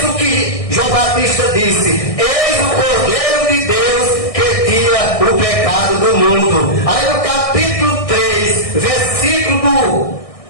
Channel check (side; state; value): right; late; 1.6 ms